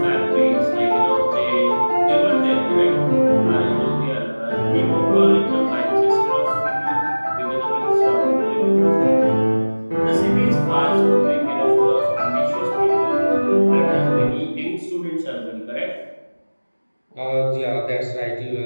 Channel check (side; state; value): both; inverted; correlation -1.00